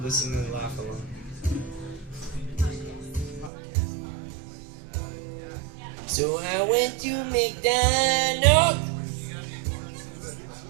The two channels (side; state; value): left; drops out; at 3.5 s